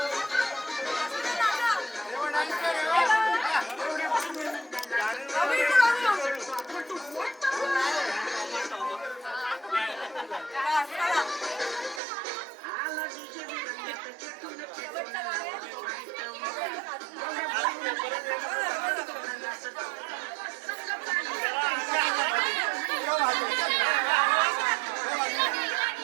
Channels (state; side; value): drops out; left; at 12.0 s